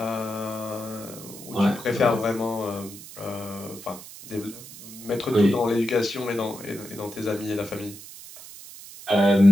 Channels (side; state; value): right; noise; hiss, 15 dB below the sound